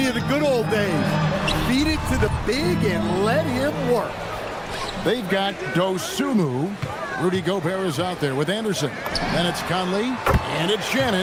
of the good old days. Feed it to the big and let him work. They've got Dosunmu. Rudy Gobert is out there with Anderson. Then it's Conley, and it's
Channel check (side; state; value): both; identical; correlation 1.00